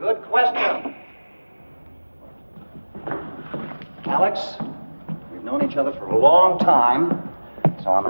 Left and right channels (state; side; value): inverted; both; correlation -1.00